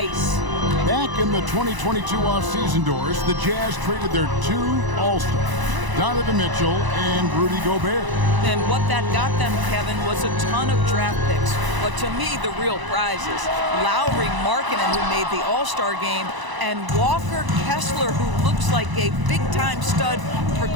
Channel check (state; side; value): late; left; 1.0 ms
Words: Back in the 2022 off-season doors, the Jazz traded their 2 All-Stars, Donovan Mitchell and Rudy Gobert. And what that got them, Kevin, was a ton of draft picks. But to me, the real prize is Lauri Markkanen, who made the All-Star game, and Walker Kessler, who looks like a big-time stud,